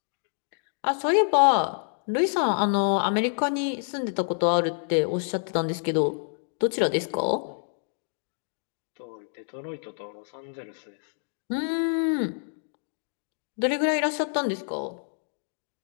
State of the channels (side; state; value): right; silent; digital silence